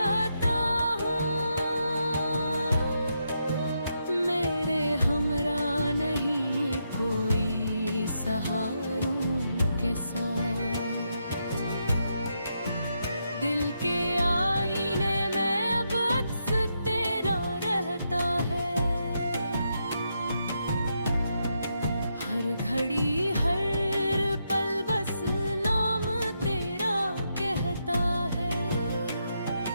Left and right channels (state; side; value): inverted; both; correlation -0.82